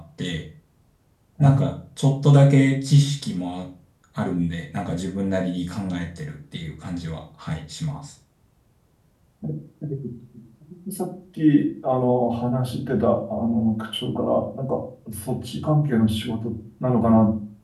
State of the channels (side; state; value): both; identical; correlation 1.00